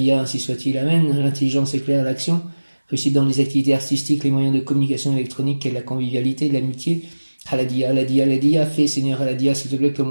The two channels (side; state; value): both; inverted; correlation -1.00